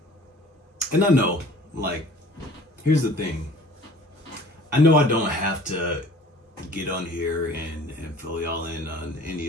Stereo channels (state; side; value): normal; both; correlation 0.49